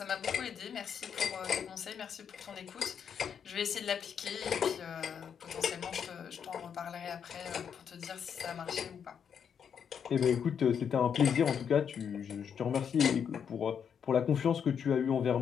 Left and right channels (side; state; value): right; quieter; 7.6 dB